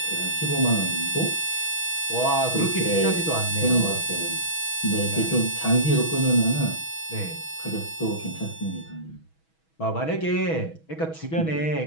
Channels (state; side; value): late; right; 6.2 ms